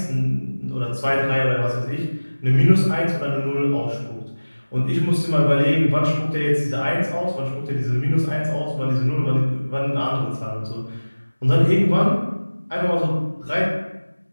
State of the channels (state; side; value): inverted; both; correlation -1.00